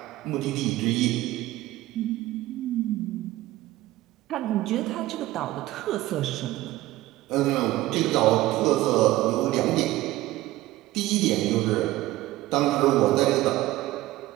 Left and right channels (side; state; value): left; quieter; 16.8 dB